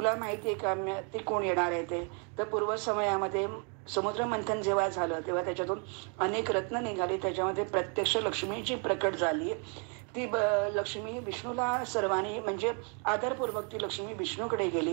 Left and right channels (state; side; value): quieter; left; 37.6 dB